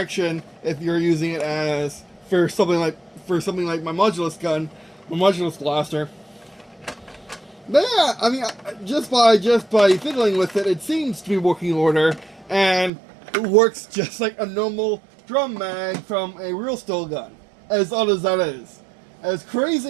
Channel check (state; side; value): drops out; left; at 12.9 s